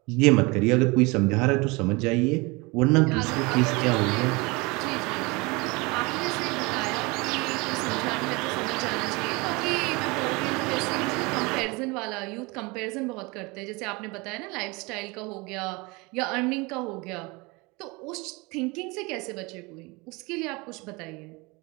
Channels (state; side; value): quieter; left; 25.9 dB